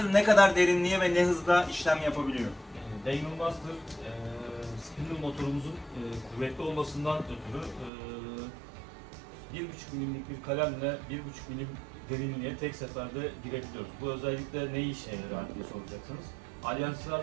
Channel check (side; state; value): left; drops out; at 7.9 s